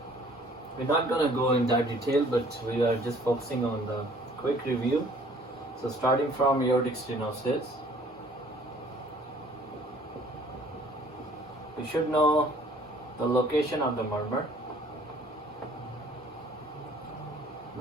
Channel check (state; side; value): normal; both; correlation 0.55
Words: We're not going to go in that detail, but we are just focusing on the quick review. So starting from aortic stenosis, we should know the location of the murmur.